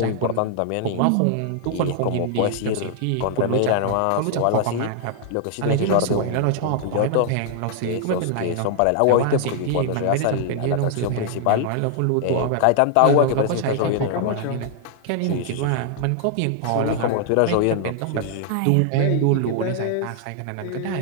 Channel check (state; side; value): different; both; correlation 0.00